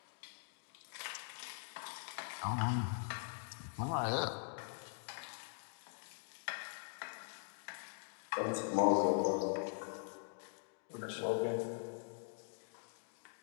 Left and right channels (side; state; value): right; silent; digital silence